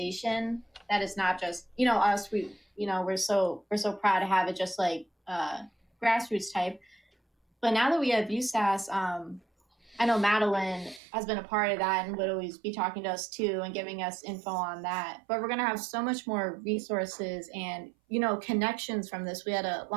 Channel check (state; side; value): drops out; left; at 11.0 s